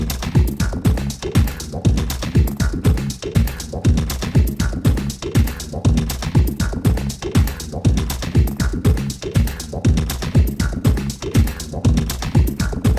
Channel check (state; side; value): identical; both; correlation 1.00